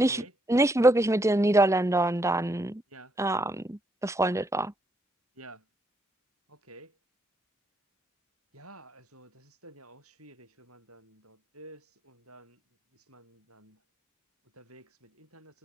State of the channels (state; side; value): normal; both; correlation 0.75